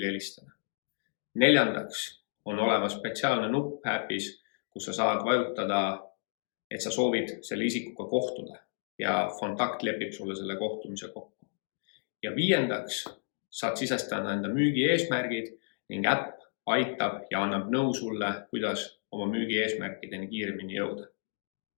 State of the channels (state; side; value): silent; right; digital silence